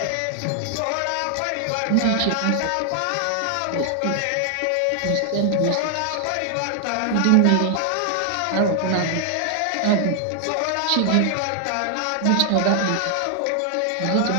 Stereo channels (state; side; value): different; both; correlation 0.00